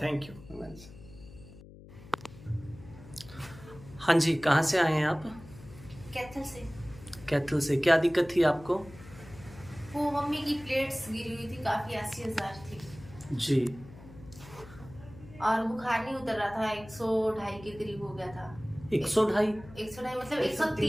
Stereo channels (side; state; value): left; noise; hum, 18 dB below the sound